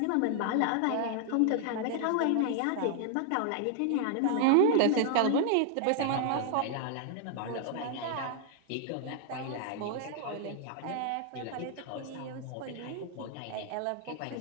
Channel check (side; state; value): both; different; correlation 0.00